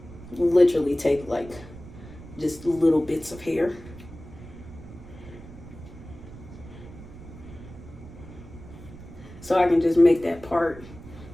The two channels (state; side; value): noise; right; rumble, 16 dB below the sound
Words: literally take like just little bits of hair. So I can just make that part